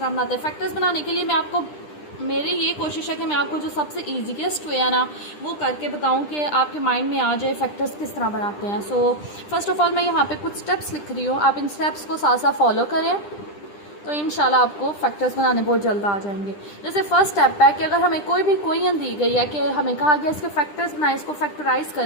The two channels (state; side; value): late; right; 10 ms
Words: बनाते हैं. factors बनाने के लिए मैं आपको मेरी ये कोशिश है कि मैं आपको जो सबसे ईजीएस्ट वे है ना वो करके बताऊं कि आपके माइंड में आ जाए फैक्टर्स किस तरह बनाते हैं. सो फर्स्ट ऑफ ऑल मैं यहाँ पे कुछ स्टेप्स लिख रही हूँ, आप इन स्टेप्स को साथ साथ फॉलो करें तो इंशाल्लाह आपको फैक्टर्स बनाने बहुत जल्द आ जाएंगे. जैसे फर्स्ट स्टेप है कि अगर हमें कोई भी इक्वेशन दी गई है कि हमें कहा गया इसके फैक्टर्स बनाए, इसको फैक्टराइज